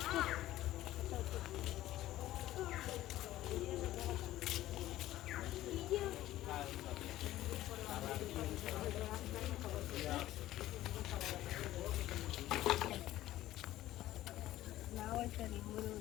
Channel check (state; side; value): quieter; right; 14.8 dB